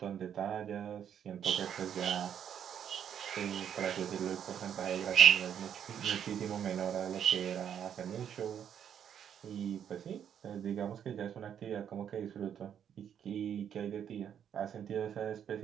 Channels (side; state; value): left; quieter; 8.9 dB